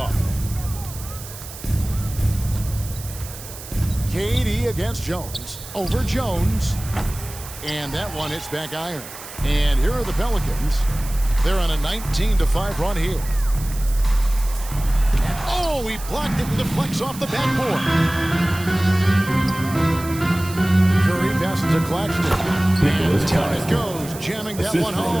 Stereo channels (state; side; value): noise; right; hiss, 14 dB below the sound